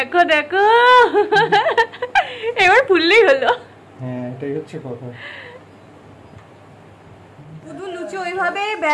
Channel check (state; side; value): identical; both; correlation 1.00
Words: দেখো, এবার ফুললেই হলো। হ্যাঁ, এটাই হচ্ছে কথা। শুধু লুচি ওইভাবে